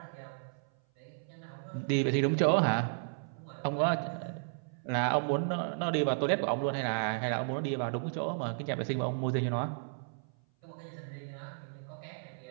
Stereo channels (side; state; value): left; silent; 55 dB below the other